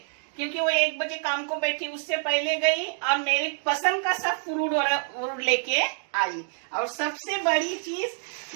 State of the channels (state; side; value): silent; left; 60 dB below the other